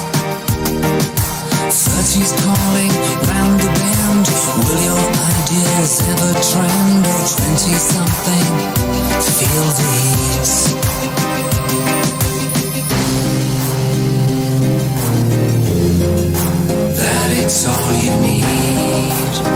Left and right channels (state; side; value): identical; both; correlation 1.00